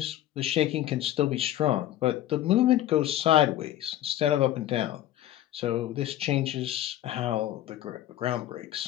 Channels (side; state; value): right; quieter; 13.1 dB